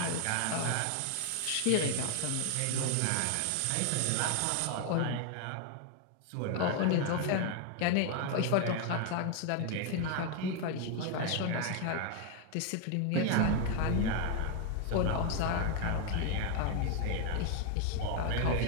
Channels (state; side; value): different; both; correlation 0.00